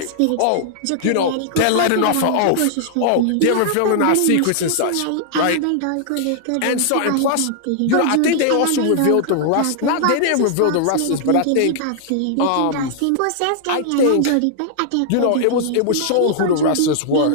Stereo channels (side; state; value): both; different; correlation -0.01